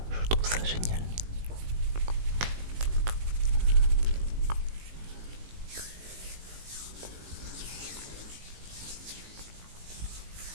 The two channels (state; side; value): late; left; 18 ms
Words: je trouve ça génial.